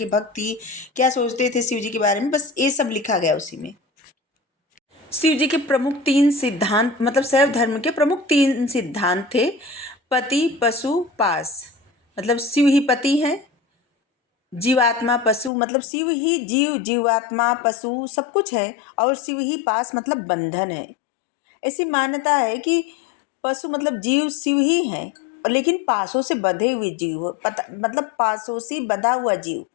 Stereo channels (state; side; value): drops out; right; at 15.5 s